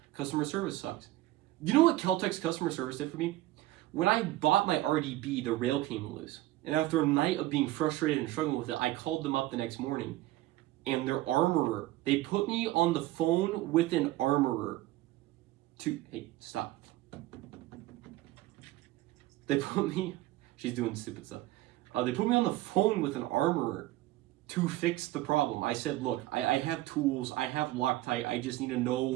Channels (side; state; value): left; quieter; 16.5 dB